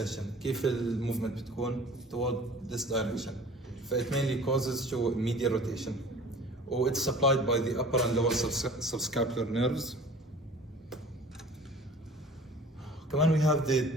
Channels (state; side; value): normal; both; correlation 0.45